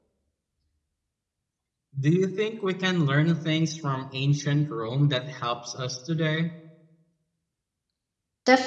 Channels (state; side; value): identical; both; correlation 1.00